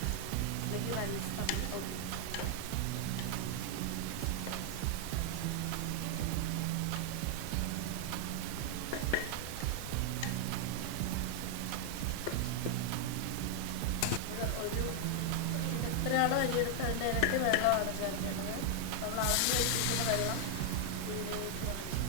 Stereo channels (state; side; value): different; both; correlation 0.00